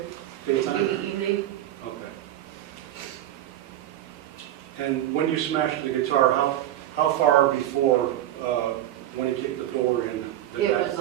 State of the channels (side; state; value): left; quieter; 12.9 dB